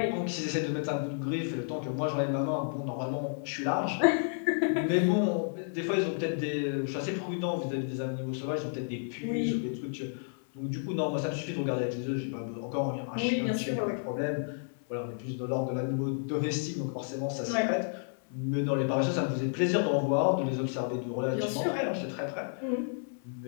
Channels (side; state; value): right; silent; 57 dB below the other